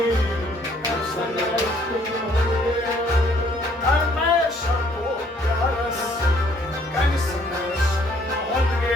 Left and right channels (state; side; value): normal; both; correlation 0.63